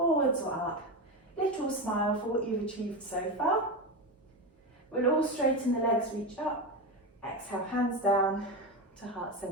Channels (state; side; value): normal; both; correlation 0.17